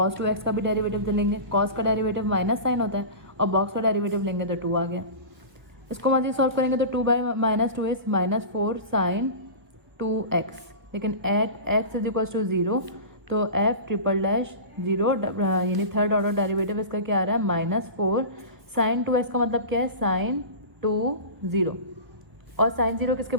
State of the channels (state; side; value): late; left; 1.2 ms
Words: 2x का भी डेरिवेटिव तो लेंगे, cos का डेरिवेटिव माइनस साइन होता है, और बॉक्स का डेरिवेटिव लेंगे तो 2 आ गया। इसको मजीद सॉल्व करेंगे तो 2 बाय -2 इज -4 साइन 2x, लेकिन at x is equals to 0, तो f ट्रिपल डैश 0 यानी थर्ड ऑर्डर डेरिवेटिव इसका क्या आ रहा है, -4 साइन 2x का मतलब क्या है, साइन 2 0, और साइन 0 किसके